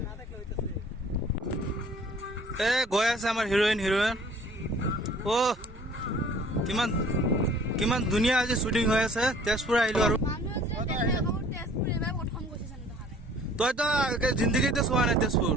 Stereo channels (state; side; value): normal; both; correlation 0.53